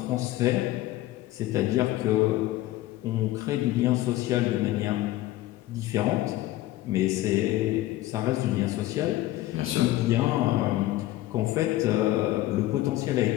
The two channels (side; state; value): right; quieter; 15.9 dB